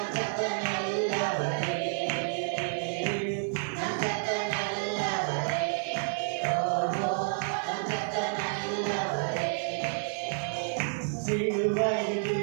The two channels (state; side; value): silent; left; 57 dB below the other